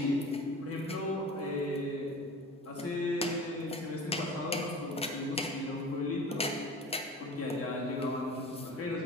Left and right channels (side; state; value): both; normal; correlation 0.39